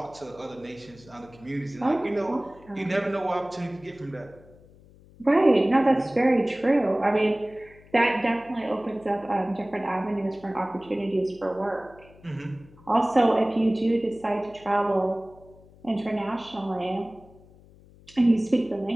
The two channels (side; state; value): left; noise; hum, 25 dB below the sound